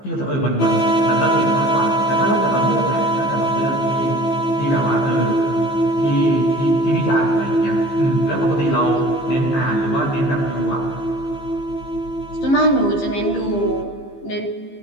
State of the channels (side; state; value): right; late; 15 ms